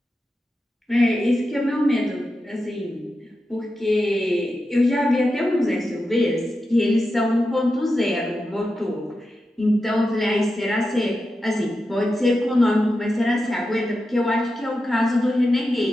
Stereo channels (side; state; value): both; normal; correlation 0.90